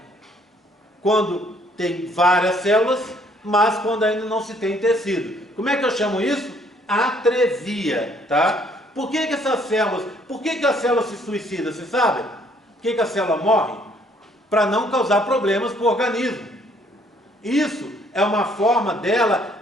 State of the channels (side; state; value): both; normal; correlation 0.64